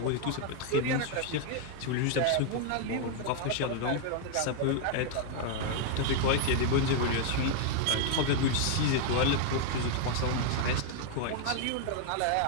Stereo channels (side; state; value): both; different; correlation 0.00